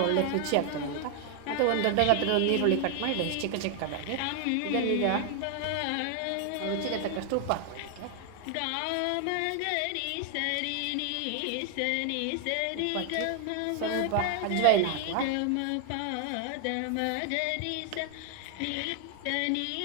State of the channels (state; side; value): different; both; correlation 0.00